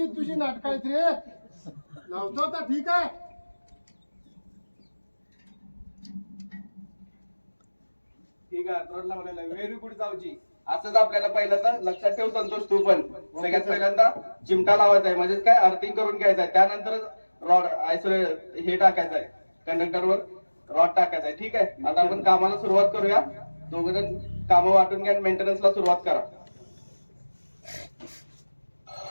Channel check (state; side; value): inverted; both; correlation -1.00